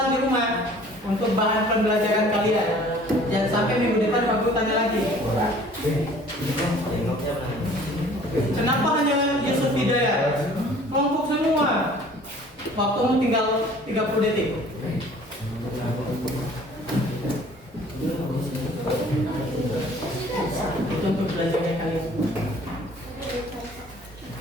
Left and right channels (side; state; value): both; normal; correlation 0.51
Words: di rumah untuk bahan pembelajaran kalian. Jangan sampai minggu depan Pak Guru tanya lagi. Kenapa hanya Yusuf Hidayat? Kelompok semua. Waktumu tinggal 30 detik. Itu untuk belajarnya kalian.